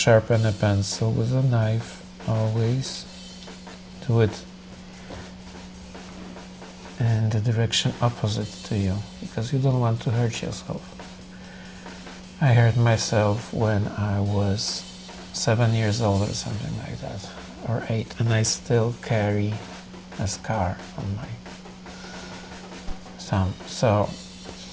a pencil with a knife. Always do it in the direction opposite to you, because you don't want to hurt yourself. I hurt myself when I was 7 years old or something like that, or 8, and I still carry a scar on my thumb. So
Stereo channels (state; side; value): identical; both; correlation 1.00